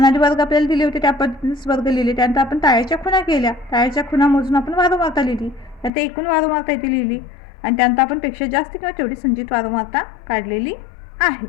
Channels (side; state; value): right; drops out; at 5.9 s